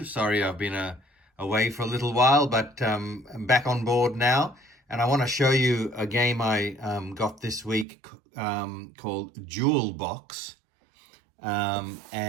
Sorry I've been away for a little while, but I'm back on board now. And I want to show you a game I got this week called Jewel Box.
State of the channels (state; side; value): drops out; left; at 7.9 s